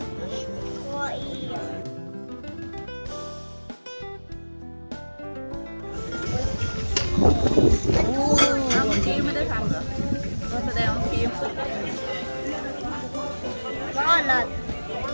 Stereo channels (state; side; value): inverted; both; correlation -1.00